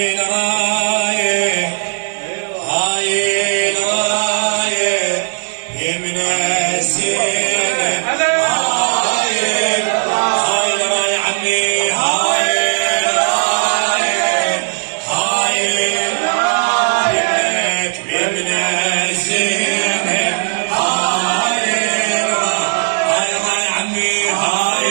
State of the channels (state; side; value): silent; left; digital silence